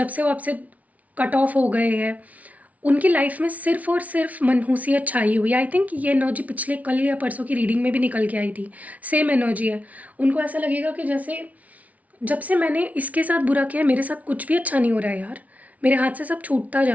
से वो आपसे कट ऑफ हो गए हैं, उनकी लाइफ में सिर्फ़ और सिर्फ़ मनहूसियत छाई हुई है। आई थिंक ये एनर्जी पिछले कल या परसों की रीडिंग में भी निकल के आई थी, सेम एनर्जी है। उनको ऐसा लगेगा कि जैसे जब से मैंने इसके साथ बुरा किया है, मेरे साथ कुछ भी अच्छा नहीं हो रहा है यार, मेरे हाथ से सब छूटता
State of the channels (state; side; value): late; left; 0.070 ms